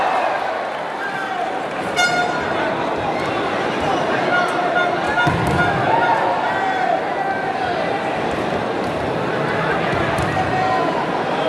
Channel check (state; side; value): identical; both; correlation 1.00